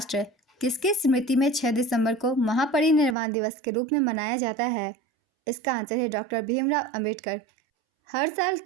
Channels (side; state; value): left; drops out; at 3.2 s